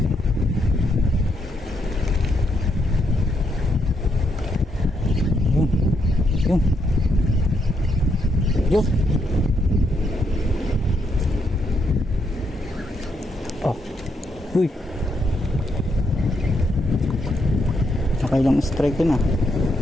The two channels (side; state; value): both; normal; correlation 0.77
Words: Yun. Uy. Nakailang strike yun ah.